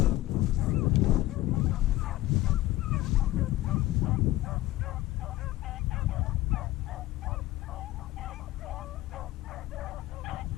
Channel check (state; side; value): quieter; right; 16.5 dB